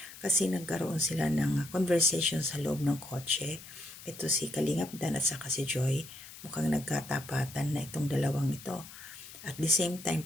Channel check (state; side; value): noise; left; hiss, 16 dB below the sound